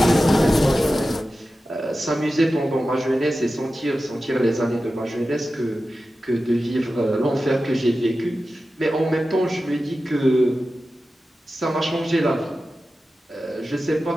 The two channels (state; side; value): normal; both; correlation 0.93